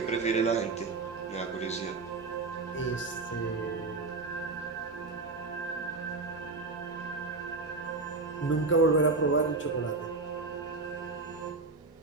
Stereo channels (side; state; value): left; quieter; 3.8 dB